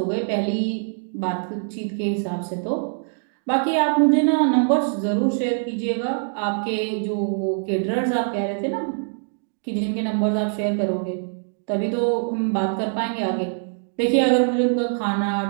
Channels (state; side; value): silent; left; digital silence